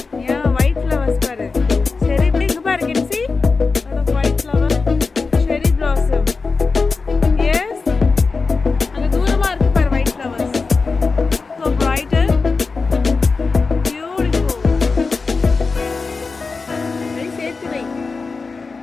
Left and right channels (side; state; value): right; quieter; 4.3 dB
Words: Yeah, white flowers பாரு. சரி இப்படி இங்க பாரு. Can you see? Lot of white flower. Cherry blossom. Yes. அங்க தூரமா இருக்கு பாரு white flowers. So bright and beautiful. Very safe to make.